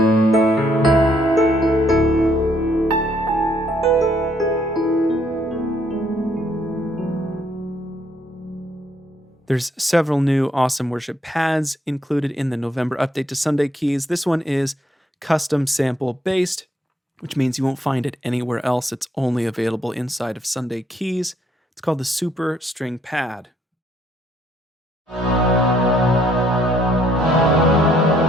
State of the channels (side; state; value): both; normal; correlation 0.69